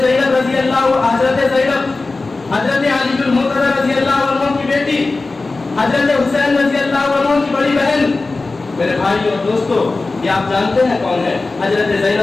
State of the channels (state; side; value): quieter; right; 3.5 dB